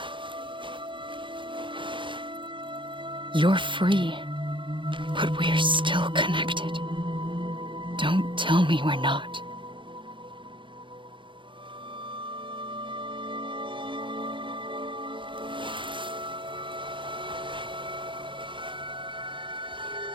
You're free, but we're still connected. Don't tell me we're not.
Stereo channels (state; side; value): late; left; 0.24 ms